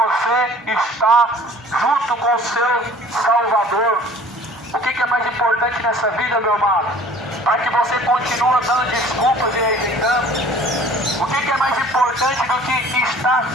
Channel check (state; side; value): normal; both; correlation 0.49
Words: estar junto com o seu Salvador? O que é mais importante nessa vida, meu amado? Para que você continue dando desculpas e rejeitando? O que é mais importante do que estar